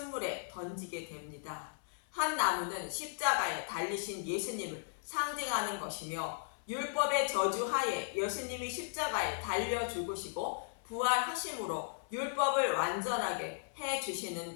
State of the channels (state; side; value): silent; right; 54 dB below the other